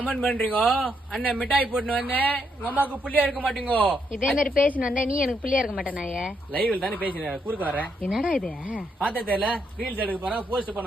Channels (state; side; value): normal; both; correlation 0.77